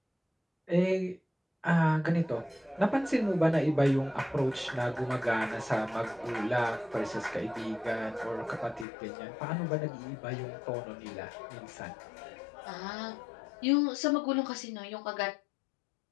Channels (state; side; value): drops out; right; at 8.8 s